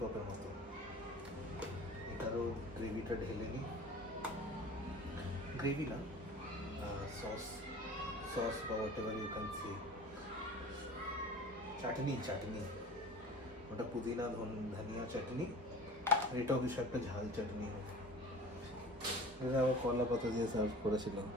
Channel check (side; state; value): both; normal; correlation 0.41